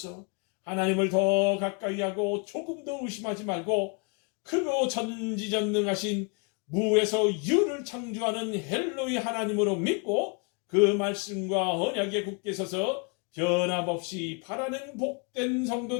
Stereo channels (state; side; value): quieter; right; 34.0 dB